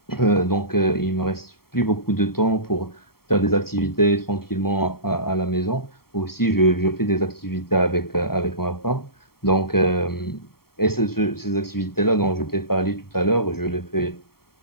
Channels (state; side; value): late; right; 0.94 ms